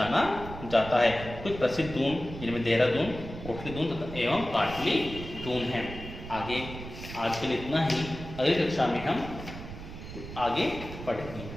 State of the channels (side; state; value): right; noise; rumble, 11 dB below the sound